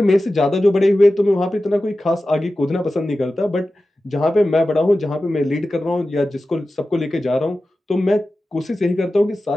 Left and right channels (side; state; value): both; normal; correlation 0.94